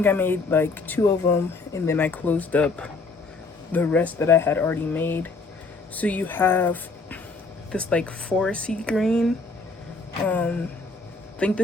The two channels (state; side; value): quieter; right; 3.8 dB